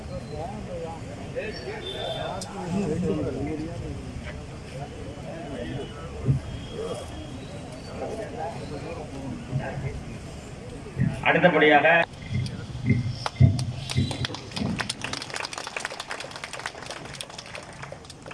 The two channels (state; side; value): identical; both; correlation 1.00